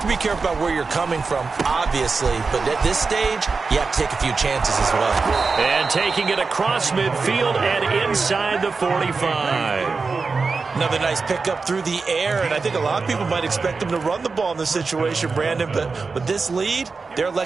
to be careful about where you're coming from, obviously. But at this stage, you have to take a few chances as well. And taking it across midfield and inside the 45. Another nice pickup through the air, and I think a lot of people might expect them to run the ball in this situation, Brandon, but with this lead, they're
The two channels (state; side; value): quieter; left; 4.4 dB